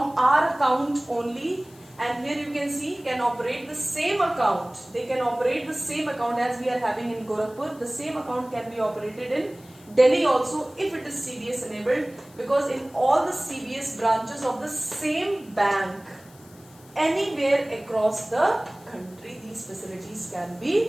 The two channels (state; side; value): noise; left; hiss, 25 dB below the sound